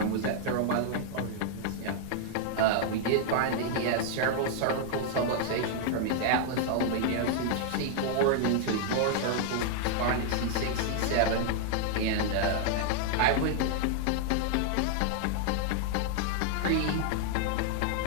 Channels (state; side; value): different; both; correlation -0.01